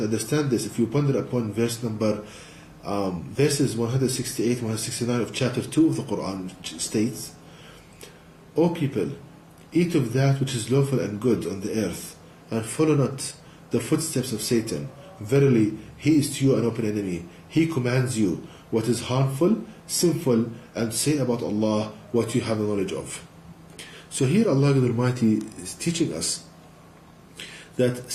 understand this, if you ponder upon verse number verses 168 169 of chapter 2 of the Quran, which states, O people, eat of that which is lawful and good on the earth, and follow not the footsteps of Satan. Verily, he is to you an open enemy. He commands you what is harmful, sinful, and say about Allah what you have the knowledge of. So here Allah Almighty is teaching us that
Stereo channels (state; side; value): identical; both; correlation 1.00